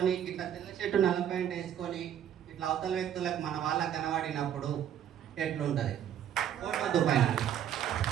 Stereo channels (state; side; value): quieter; left; 9.9 dB